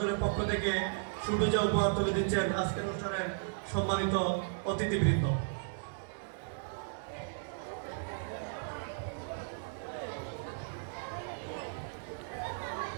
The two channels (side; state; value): left; silent; digital silence